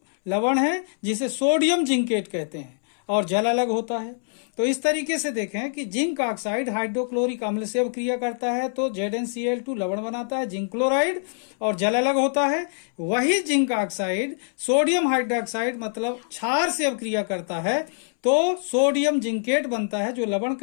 लवण है जिसे सोडियम जिंकेट कहते हैं और जल अलग होता है। तो इस तरीके से देखें कि जिंक ऑक्साइड हाइड्रोक्लोरिक अम्ल से अभिक्रिया करता है तो ZnCl2 लवण बनाता है, जिंक क्लोराइड, और जल अलग होता है। वही जिंक ऑक्साइड सोडियम हाइड्रोक्साइड मतलब क्षार से अभिक्रिया करता है तो सोडियम जिंकेट बनता है जो लवण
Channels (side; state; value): right; silent; 62 dB below the other